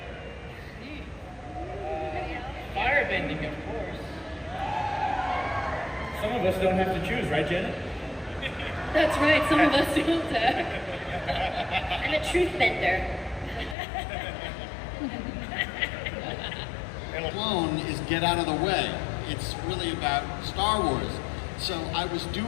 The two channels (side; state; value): right; drops out; at 13.8 s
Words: Firebending, of course. Some of us don't have to choose, right, Janet? That's right, some of us don't. I'm a truth bender. Clone is get out of the way. It's really about Star Wars. So I was